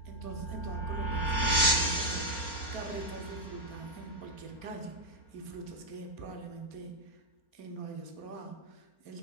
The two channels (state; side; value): late; right; 4.4 ms